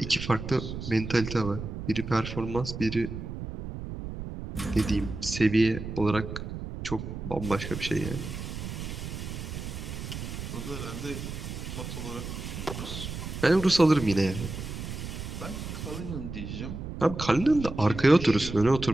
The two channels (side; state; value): right; noise; rumble, 7 dB below the sound